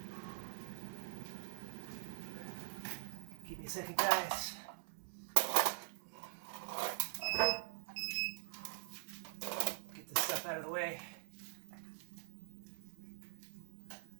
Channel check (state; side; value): silent; left; digital silence